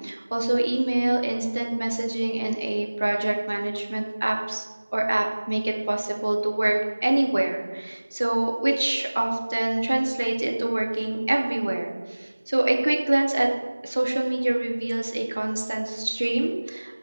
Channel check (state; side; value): inverted; both; correlation -1.00